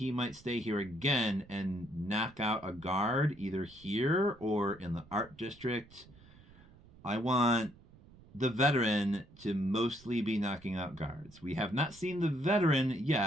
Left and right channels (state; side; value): noise; right; rumble, 23 dB below the sound